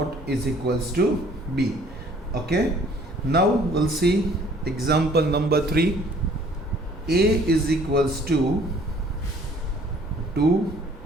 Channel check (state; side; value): normal; both; correlation 0.57